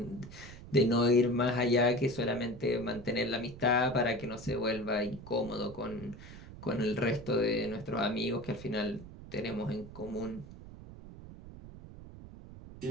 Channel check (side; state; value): right; noise; rumble, 15 dB below the sound